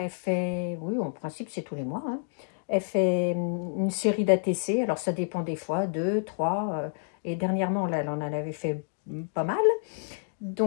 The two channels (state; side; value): silent; right; digital silence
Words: fait, oui, en principe c'est tous les mois, hein. Elle fait une série d'ATC, alors ça dépend des fois, deux, trois, et dernièrement, là, elle en avait fait pas mal.